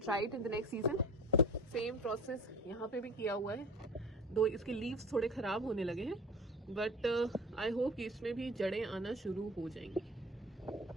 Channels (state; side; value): normal; both; correlation 0.39